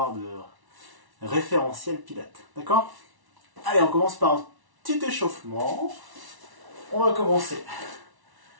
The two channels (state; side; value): late; left; 1.1 ms